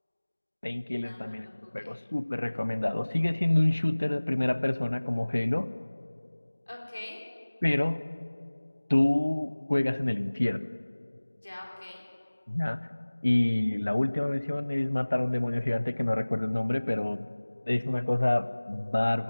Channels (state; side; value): inverted; both; correlation -1.00